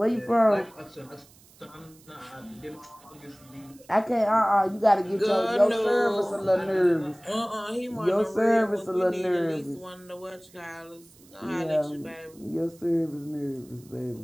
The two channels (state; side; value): noise; right; hiss, 26 dB below the sound